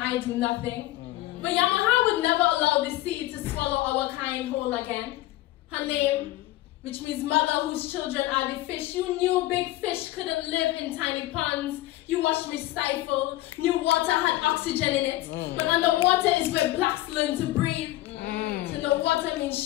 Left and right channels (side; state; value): right; quieter; 16.4 dB